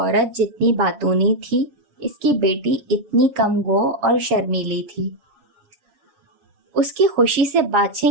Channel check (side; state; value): left; late; 7.2 ms